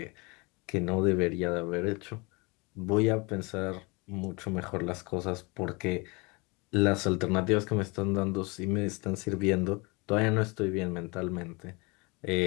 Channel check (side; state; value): right; quieter; 28.0 dB